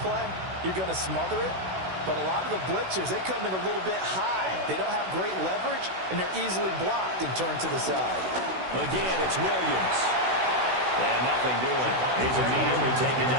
play, you're going to smother it. But a lot of the blitzers, they come in a little bit high. They don't have great leverage, and they're easily blocked and turned to the side. Again, it's Williams. And nothing doing. He's immediately taken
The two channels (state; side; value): late; left; 16 ms